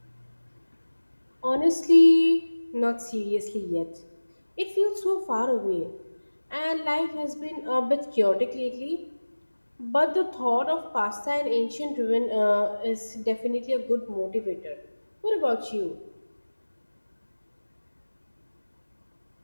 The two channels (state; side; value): inverted; both; correlation -1.00